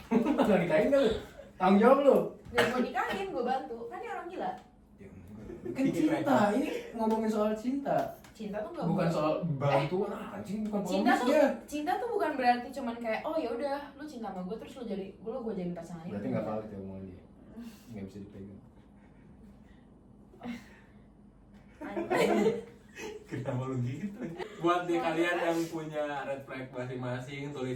nggak nikahin kan lu? Tanggung jawab lu. Dan gue nikahin, gue bantu. Kan dia orang gila. Kan cinta, ini ngomongin soal cinta, Cinta tuh nggak bukan soal bantuan anjing, bukan cinta pengemis tuh dia. cinta tuh bukan berarti cuman kayak oh ya udah lu cinta sama gue terus lu jadi gue jadi pasangan itu. Berarti nggak valid ya omongan dia, nggak bisa dipegang. Kenapa lu gitu? Buat nih kalian yang punya red flag masing-masing, tulis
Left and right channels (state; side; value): identical; both; correlation 1.00